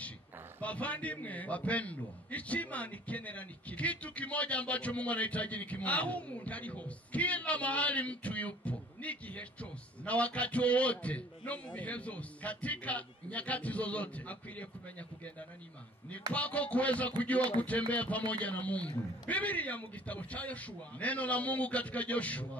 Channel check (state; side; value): normal; both; correlation 0.52